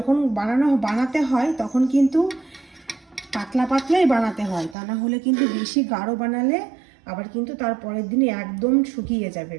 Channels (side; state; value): left; drops out; at 4.8 s